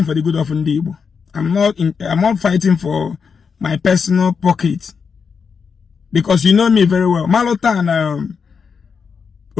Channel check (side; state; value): right; quieter; 5.9 dB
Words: for the good of Ndi Igbo. I'm not fighting for my personal pocket. Because you know me very well. Malota and